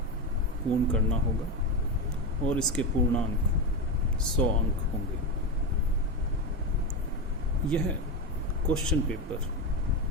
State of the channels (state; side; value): normal; both; correlation 0.15